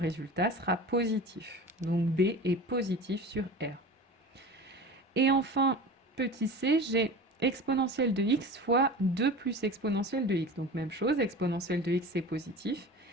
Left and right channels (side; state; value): both; normal; correlation 0.34